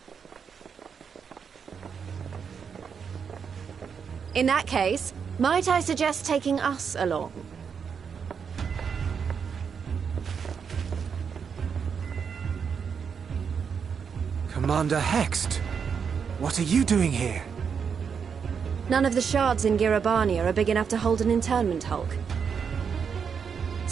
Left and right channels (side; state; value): left; quieter; 6.6 dB